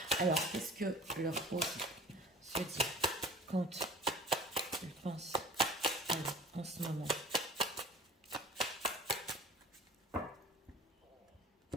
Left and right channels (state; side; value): normal; both; correlation 0.44